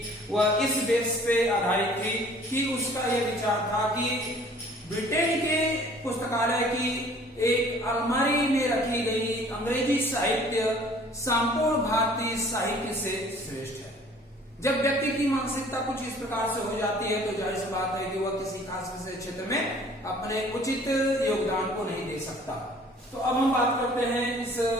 वह इस बेस पे आधारित थी कि उसका यह विचार था कि ब्रिटेन के पुस्तकालय की एक अलमारी में रखी गई अंग्रेजी साहित्य संपूर्ण भारतीय साहित्य से श्रेष्ठ है। जब व्यक्ति की मानसिकता कुछ इस प्रकार से हो जाती है तो जाहिर सी बात है कि वह किसी खास विषय क्षेत्र में अपने उचित योगदान को नहीं दे सकता। तो अब हम बात करते हैं इस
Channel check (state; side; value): normal; both; correlation 0.53